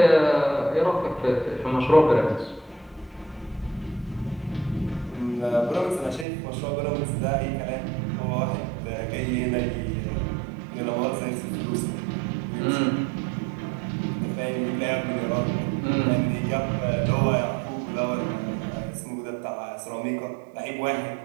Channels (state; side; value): drops out; left; at 6.2 s